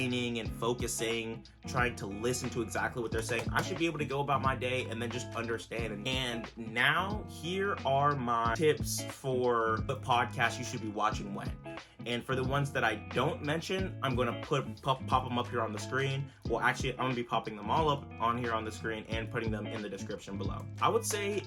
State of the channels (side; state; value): both; identical; correlation 1.00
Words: and focusing, trying to listen to exactly what they're saying. I should be able to go about my day and then just understand. And now here are my tips for what podcasts you should be watching when. And for the ones that I don't mention, I'm going to pop them up here on the screen. Well, actually, I'm going to be popping them all up on here on the screen and putting them in the description below. I would say